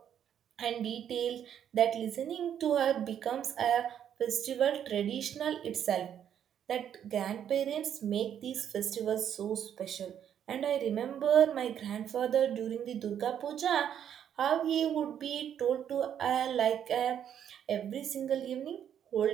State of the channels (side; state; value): left; quieter; 9.3 dB